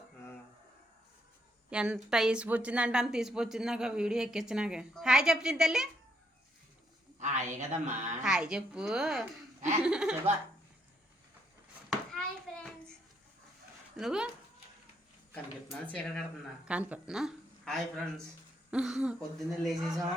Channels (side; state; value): both; normal; correlation 0.74